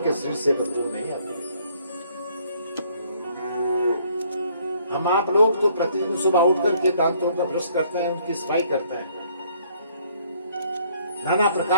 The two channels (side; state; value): both; inverted; correlation -0.63